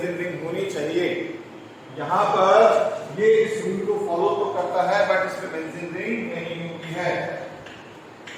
ring होनी चाहिए। यहां पर ये इस रूल को फॉलो तो करता है बट इसमें बेंजीन रिंग नहीं होती है,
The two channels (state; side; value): identical; both; correlation 1.00